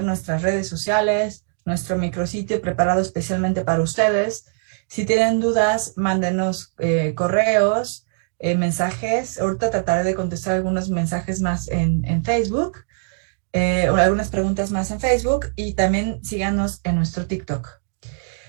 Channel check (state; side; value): silent; left; digital silence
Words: nuestras redes sociales, nuestro micrositio preparado especialmente para ustedes. Si tienen dudas, mándenos correos, mensajes. Ahorita trataré de contestar algunos mensajes más en Facebook, o algunas preguntas más en Facebook, y también síganos en nuestro TikTok.